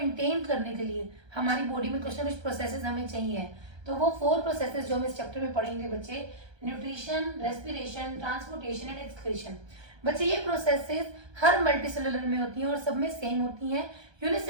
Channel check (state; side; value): late; left; 1.3 ms